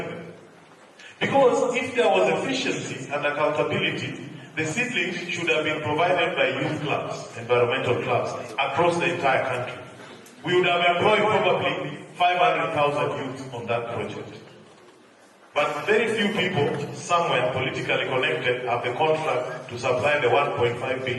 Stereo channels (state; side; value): identical; both; correlation 1.00